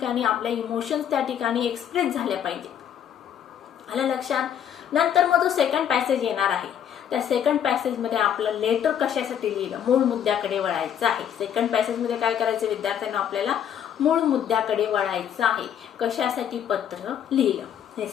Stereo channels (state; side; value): quieter; right; 9.3 dB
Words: आपल्या इमोशन्स त्या ठिकाणी एक्सप्रेस झाल्या पाहिजे. आलं लक्षात. नंतर मग जो सेकंड पॅसेज येणार आहे, त्या सेकंड पॅसेज मध्ये आपलं लेटर कशासाठी लिहिलं, मूळ मुद्द्याकडे वळायचं आहे. सेकंड पॅसेज मध्ये काय करायचं विद्यार्थ्यांना, आपल्याला मूळ मुद्द्याकडे वळायचं आहे. कशासाठी पत्र लिहिलं हे